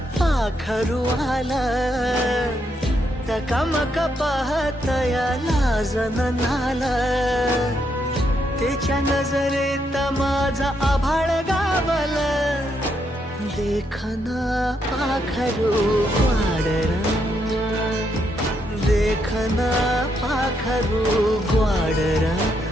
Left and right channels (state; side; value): normal; both; correlation 0.78